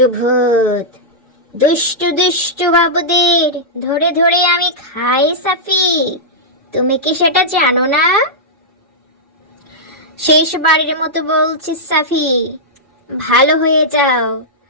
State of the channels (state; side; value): normal; both; correlation -0.10